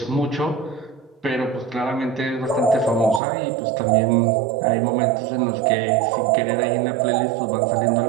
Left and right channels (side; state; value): left; drops out; at 3.2 s